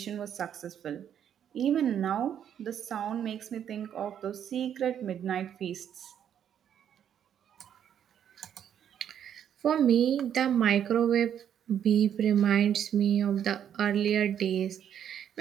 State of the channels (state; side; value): quieter; left; 9.3 dB